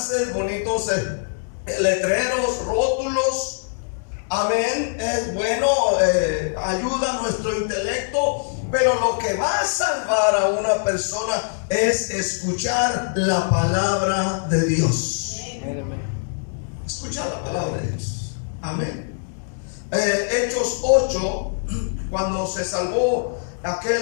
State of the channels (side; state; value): right; silent; digital silence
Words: bonitos letreros, rótulos. Amén. Es bueno, ayuda a nuestro intelecto. Pero lo que va a salvar a una persona es escuchar la palabra de Dios. Escuchar la palabra de Dios. Amén. Hechos 8, cuando se salvó